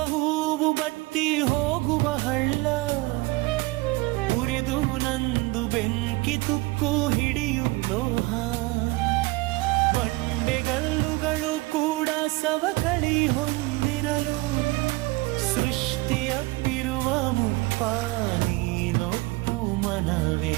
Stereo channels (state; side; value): quieter; left; 22.1 dB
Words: ಹೂವು ಬತ್ತಿ ಹೋಗುವ ಹಳ್ಳ, ಉರಿದು ನಂದು ಬೆಂಕಿ ತುಕ್ಕು ಹಿಡಿಯು ಲೋಹ. ಬಂಡೆಗಲ್ಲುಗಳು ಕೂಡ ಸವಕಳಿ ಹೊಂದಿರಲು, ಸೃಷ್ಟಿಯಪ್ಪಿರುವ ಮುಪ್ಪ ನೀನೊಪ್ಪು ಮನವೇ.